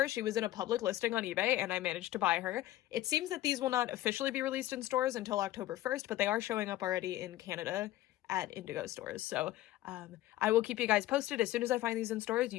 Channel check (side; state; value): right; quieter; 15.4 dB